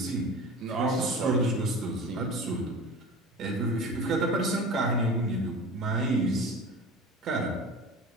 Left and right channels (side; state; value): both; normal; correlation 0.35